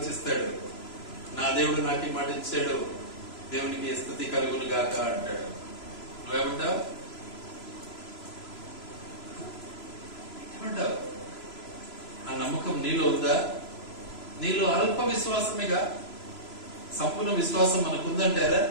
నా దేవుడు నాకు ఈ మాట ఇచ్చాడు, దేవునికి స్తుతి కలుగును గాక అంటాడు. నువ్వేమంటావు? ఏమంటావు? ఆ నమ్మకం నీలో ఉందా? నీలో అల్ప విశ్వాసమేగా. సంపూర్ణ విశ్వాసం మనకుందంటారా?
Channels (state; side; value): late; right; 3.0 ms